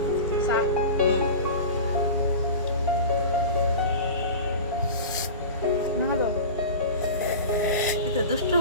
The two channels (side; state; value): both; inverted; correlation -0.31